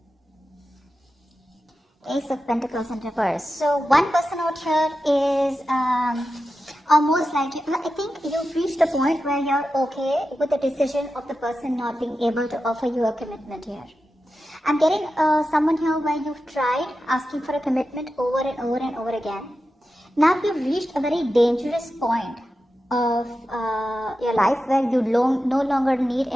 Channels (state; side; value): normal; both; correlation 0.92